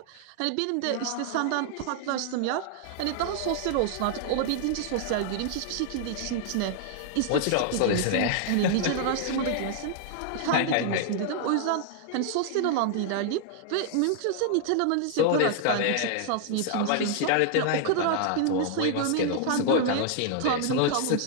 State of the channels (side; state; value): both; different; correlation 0.00